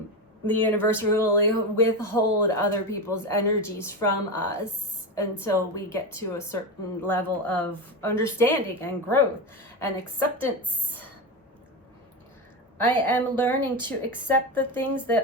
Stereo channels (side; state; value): both; normal; correlation 0.17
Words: The universe will withhold other people's energies from us until we get to a certain level of understanding and growth and acceptance. I am learning to accept the things